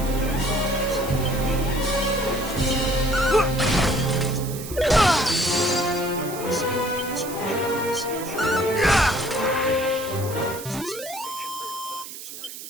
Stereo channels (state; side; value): noise; right; hiss, 11 dB below the sound